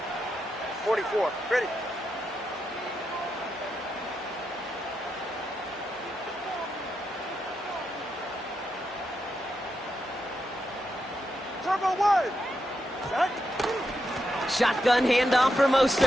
Ready. Turbo 1. Set. Shotgun handoff for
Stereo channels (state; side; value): normal; both; correlation 0.85